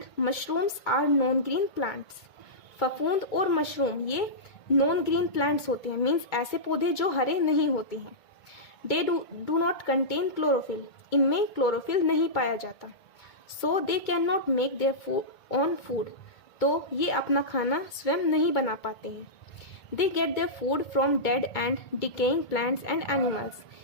mushrooms are non-green plants. फफूंद और mushroom ये non green plants होते हैं, means ऐसे पौधे जो हरे नहीं होते हैं. They do not contain chlorophyll, इनमें क्लोरोफिल नहीं पाया जाता. So they can not make their own food, तो ये अपना खाना स्वयं नहीं बना पाते हैं. They get their food from dead and decaying plants and animals,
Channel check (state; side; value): late; right; 2.2 ms